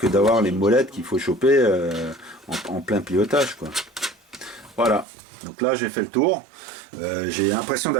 d'avoir les molettes qu'il faut choper en plein pilotage, quoi. Voilà. Donc là, j'ai fait le tour. J'ai l'impression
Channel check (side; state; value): left; drops out; at 5.1 s